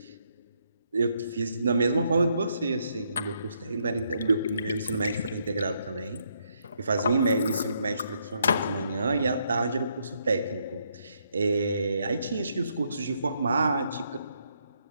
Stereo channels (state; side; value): inverted; both; correlation -0.75